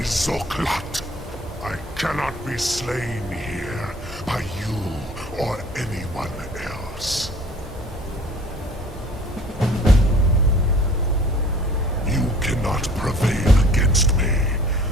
Zoklat. I cannot be slain here by you or anyone else. You cannot prevail against me.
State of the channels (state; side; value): normal; both; correlation 0.50